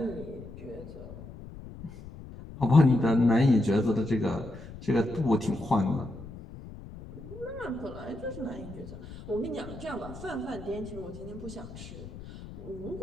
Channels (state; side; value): noise; left; rumble, 14 dB below the sound